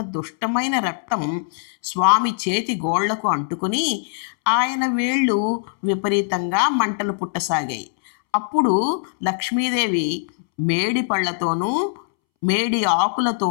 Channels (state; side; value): silent; right; 65 dB below the other